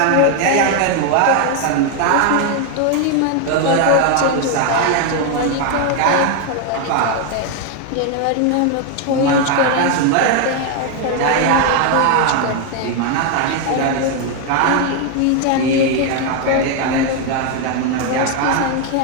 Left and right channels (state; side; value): different; both; correlation 0.01